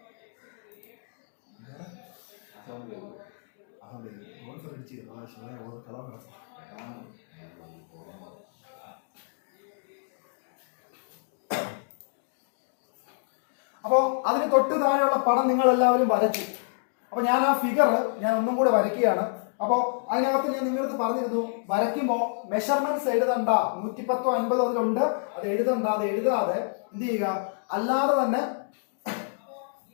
അപ്പോ അതിന് തൊട്ട് താഴെയുള്ള പടം നിങ്ങൾ എല്ലാവരും വരച്ചു. അപ്പൊ ഞാൻ ആ ഫിഗർ ഞാൻ ഒന്നും കൂടെ വരയ്ക്കുകയാണ്. അപ്പോ അതിനകത്ത് ഞാൻ നിങ്ങൾക്ക് പറഞ്ഞിരുന്നു, വരയ്ക്കുമ്പോ മെഷർമെന്റ്സ് എഴുതണ്ട, 110 50 അതിലുണ്ട്, അത് എഴുതണ്ട. അത് എഴുതാതെ എന്ത് ചെയ്യുക, അല്ലാതെ തന്നെ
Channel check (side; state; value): right; silent; digital silence